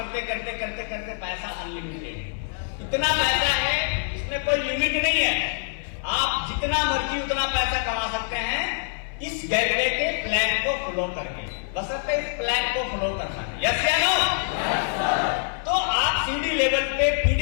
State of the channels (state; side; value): silent; right; 57 dB below the other